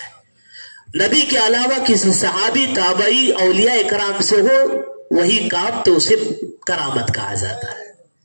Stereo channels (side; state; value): both; inverted; correlation -1.00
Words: نبی کے علاوہ کسی صحابی، تابعی، اولیاء اکرام سے ہو وہی کام تو اسے کرامت کہا جاتا ہے۔